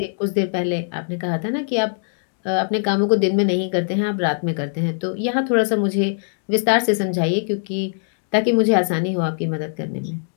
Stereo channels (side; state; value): right; silent; digital silence